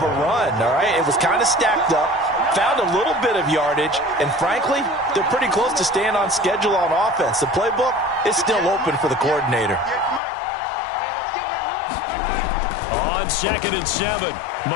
a run, all right? It was kind of stacked up, found a little bit of yardage, and frankly, they're pretty close to staying on schedule on offense. The playbook is still open for the coordinator. On 2nd and 7,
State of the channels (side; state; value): right; drops out; at 10.2 s